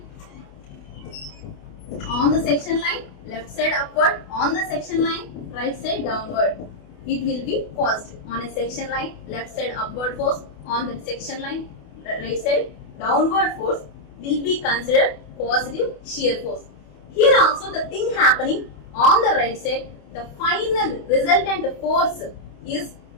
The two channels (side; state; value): right; late; 28 ms